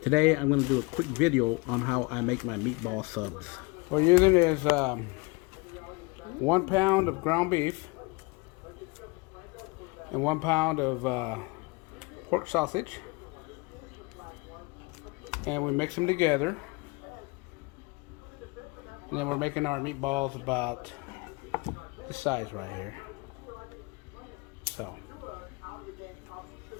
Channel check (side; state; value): right; quieter; 26.9 dB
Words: Today I'm going to do a quick video on how I make my meatball subs. What we're using is 1 pound of ground beef and 1 pound of pork sausage, and we mix them together, and then we're making our meatballs about this size right here. So